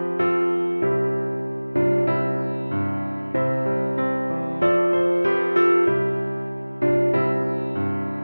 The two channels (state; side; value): inverted; both; correlation -1.00